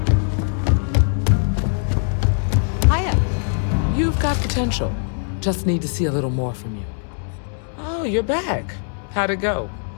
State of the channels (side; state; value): right; silent; 65 dB below the other